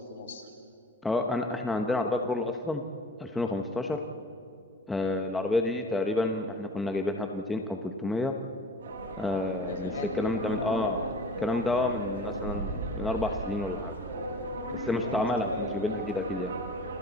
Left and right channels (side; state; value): both; normal; correlation 0.42